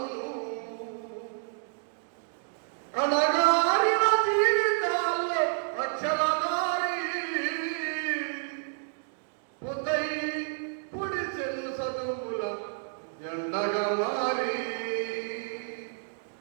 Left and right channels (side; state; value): left; silent; digital silence